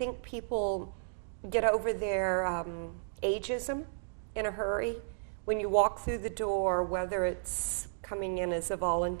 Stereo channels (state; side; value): silent; left; digital silence